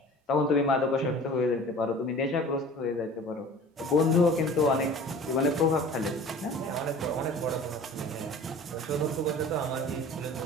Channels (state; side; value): normal; both; correlation 0.43